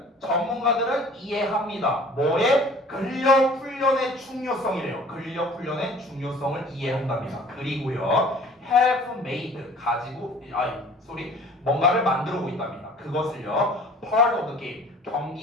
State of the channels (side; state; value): both; normal; correlation 0.49